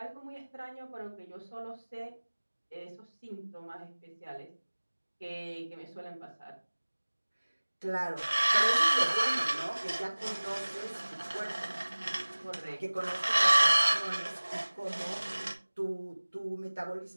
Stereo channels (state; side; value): inverted; both; correlation -1.00